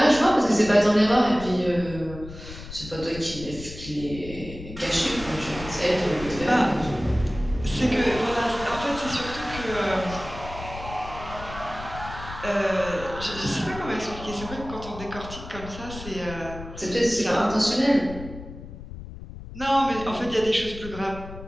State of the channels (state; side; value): noise; left; rumble, 12 dB below the sound